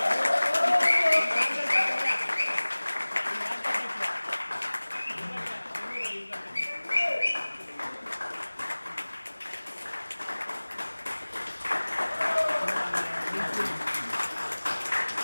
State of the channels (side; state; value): both; inverted; correlation -1.00